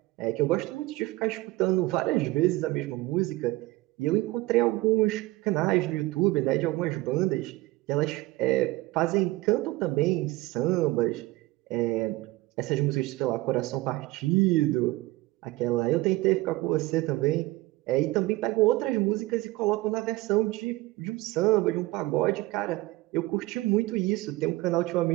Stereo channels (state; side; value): quieter; left; 19.6 dB